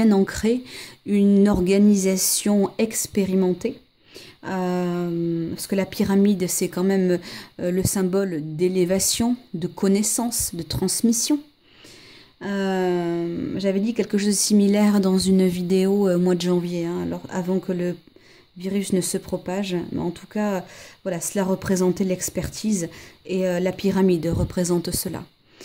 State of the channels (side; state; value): both; identical; correlation 1.00